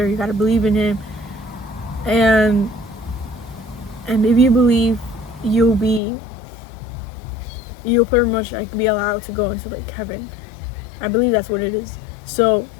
you gotta believe in him. And if you believe, you'll pretty much like be allowed to go into like heaven. I believe that's what it is. So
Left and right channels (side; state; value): right; drops out; at 6.0 s